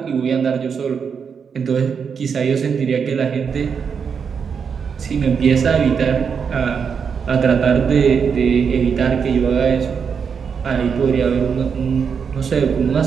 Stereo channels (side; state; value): left; quieter; 6.4 dB